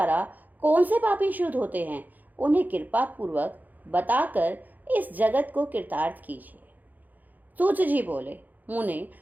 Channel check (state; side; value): late; left; 0.083 ms